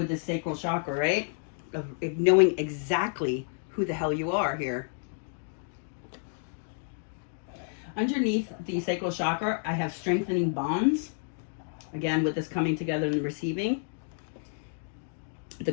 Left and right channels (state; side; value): silent; right; 58 dB below the other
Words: the sacral chakra, right? Of knowing exactly who the hell you are here. Underneath the sacral chakra, I have strengthening bonds. Again, with this coming together and receiving. The